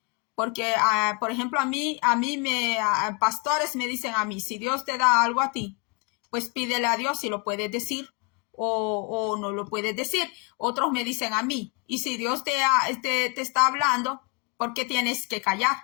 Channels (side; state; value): right; quieter; 30.8 dB